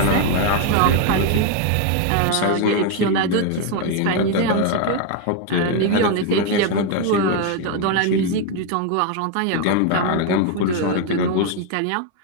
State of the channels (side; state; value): both; different; correlation 0.01